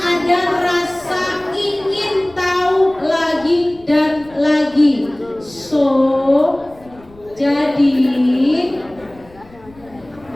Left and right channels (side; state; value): left; noise; rumble, 25 dB below the sound